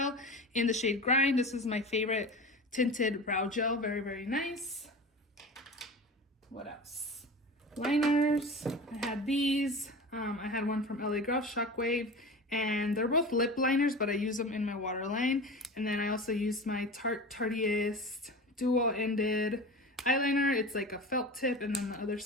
in the shade Grind. This is my favorite tinted brow gel. Very, very nice. What else? Liners. I had these. I had one from LA Girl, Shockwave. And they're both lip liners, but I use them in my waterline. And then I also used my Tarteist dual-ended eyeliner. It's like a felt tip, and then the other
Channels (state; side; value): normal; both; correlation 0.32